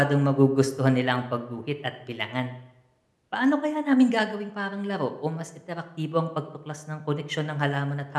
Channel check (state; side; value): identical; both; correlation 1.00